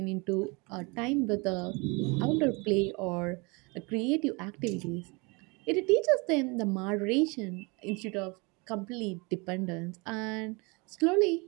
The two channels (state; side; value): quieter; left; 28.6 dB